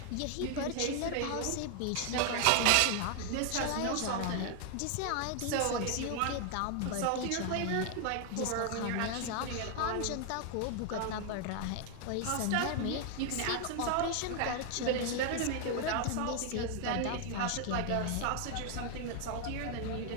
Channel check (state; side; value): different; both; correlation 0.00